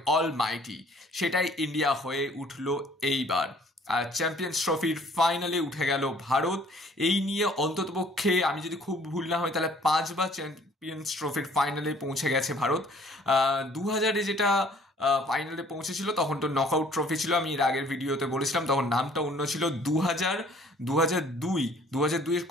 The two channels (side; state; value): both; normal; correlation 0.57